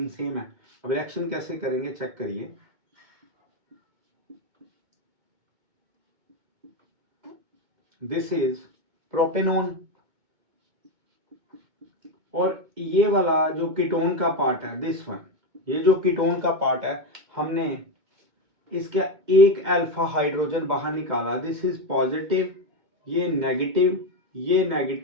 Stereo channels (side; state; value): left; late; 2.2 ms